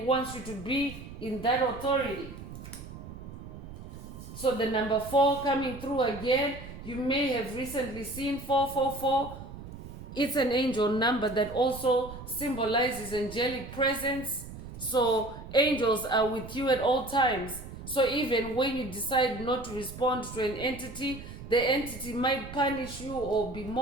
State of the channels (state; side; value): noise; right; rumble, 13 dB below the sound